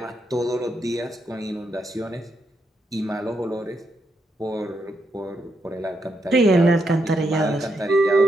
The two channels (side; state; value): both; normal; correlation 0.80